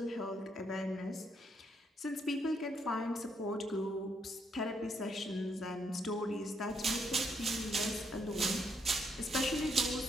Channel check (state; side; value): normal; both; correlation 0.74